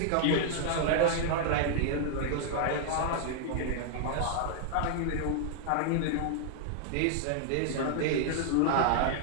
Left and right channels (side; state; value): both; different; correlation -0.01